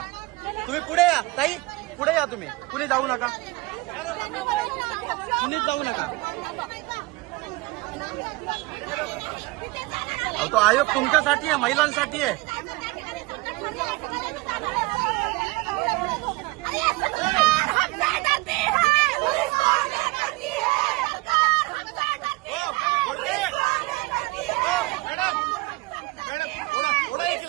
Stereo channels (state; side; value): quieter; left; 22.6 dB